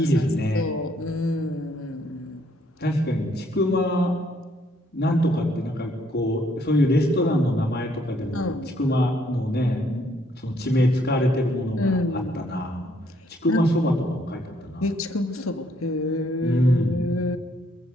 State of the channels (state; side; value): normal; both; correlation 0.69